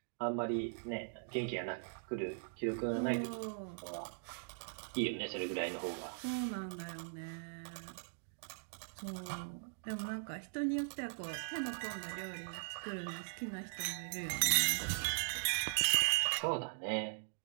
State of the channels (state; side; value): silent; left; digital silence